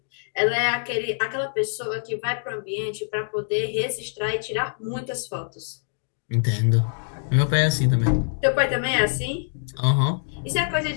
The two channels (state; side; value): silent; right; digital silence